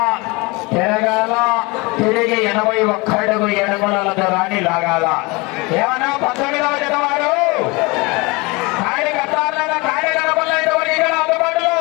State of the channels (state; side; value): quieter; right; 25.7 dB